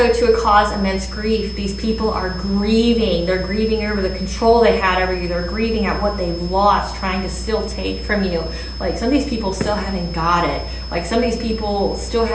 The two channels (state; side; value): identical; both; correlation 1.00